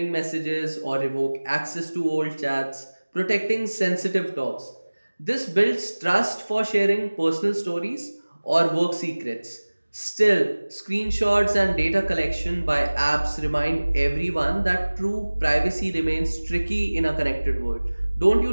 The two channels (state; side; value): inverted; both; correlation -1.00